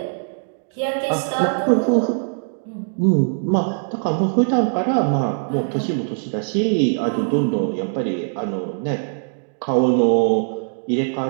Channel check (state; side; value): silent; left; digital silence